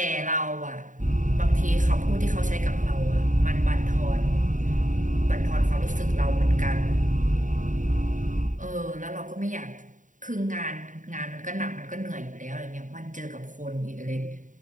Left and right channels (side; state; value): left; late; 0.37 ms